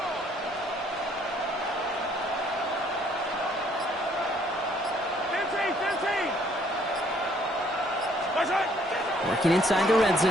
Working inside the red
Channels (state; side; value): normal; both; correlation 0.64